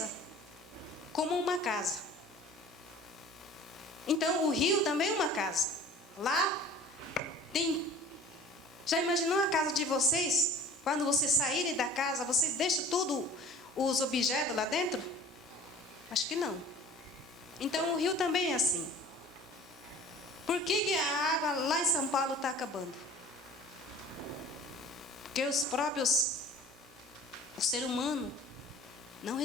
como uma casa. Então, o rio também é uma casa. Lá tem... Já imaginou a casa de vocês? Quando vocês saírem da casa, vocês deixam tudo, os objetos lá dentro? Acho que não. Então, o rio também é assim. Por que a água lá em São Paulo está acabando? Porque o ser humano não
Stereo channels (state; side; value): normal; both; correlation 0.45